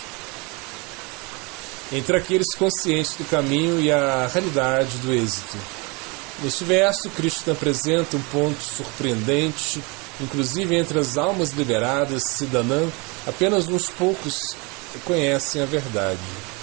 entre aqueles conscientes do caminho e a realidade do êxito. Neste verso, Krishna apresenta um ponto surpreendente, inclusive entre as almas liberadas, Siddhanam, apenas uns poucos conhecem a verdade.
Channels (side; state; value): left; quieter; 28.6 dB